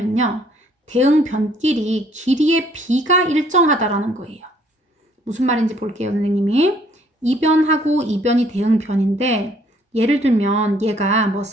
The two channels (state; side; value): normal; both; correlation 0.62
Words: 대응변끼리 길이의 B가 일정하다라는 거예요. 무슨 말인지 볼게요, 선생님이. 이변하고 이변이 대응변인데 예를 들면 얘가 뭐